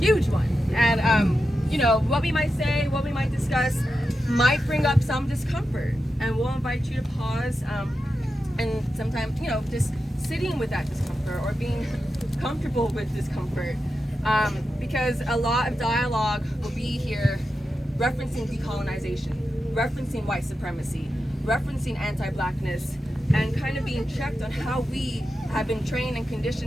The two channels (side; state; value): both; normal; correlation 0.90